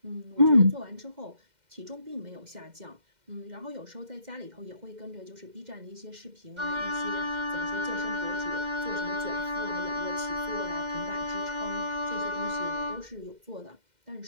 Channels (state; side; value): late; left; 2.1 ms